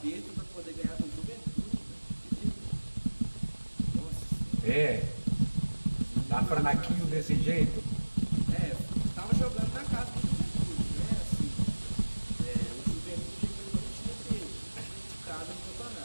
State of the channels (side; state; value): both; inverted; correlation -1.00